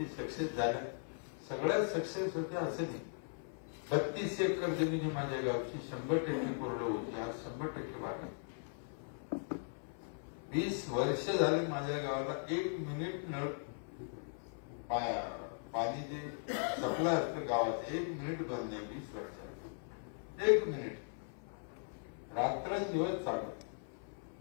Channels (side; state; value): right; silent; 52 dB below the other